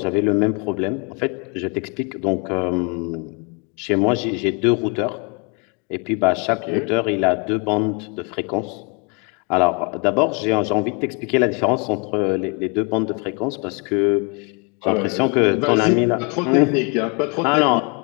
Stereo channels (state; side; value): quieter; right; 33.5 dB